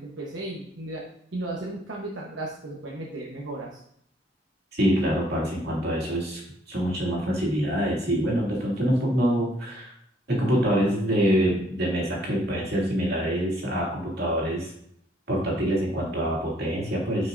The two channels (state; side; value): normal; both; correlation 0.64